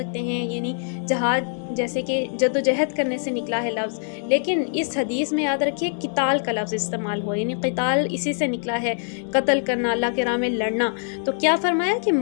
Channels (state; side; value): silent; right; 63 dB below the other